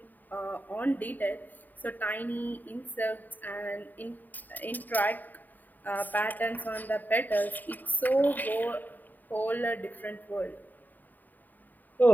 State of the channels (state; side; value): late; right; 0.087 ms